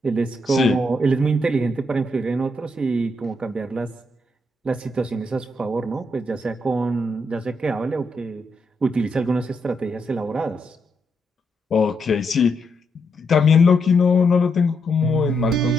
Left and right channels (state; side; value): normal; both; correlation 0.80